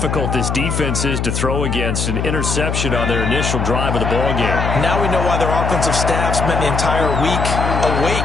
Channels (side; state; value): left; noise; hum, 1 dB below the sound